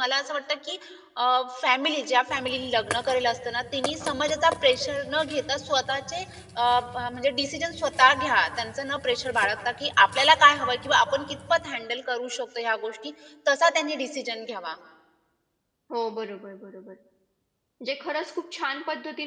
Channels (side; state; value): both; identical; correlation 1.00